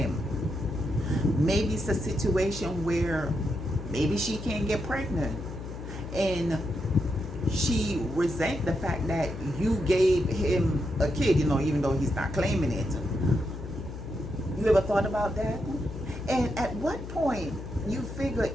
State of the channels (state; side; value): noise; left; hum, 9 dB below the sound